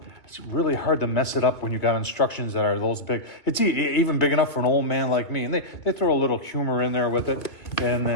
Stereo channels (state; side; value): late; right; 2.4 ms